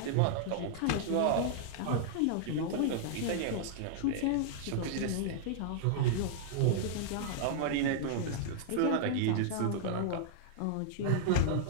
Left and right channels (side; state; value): both; different; correlation -0.01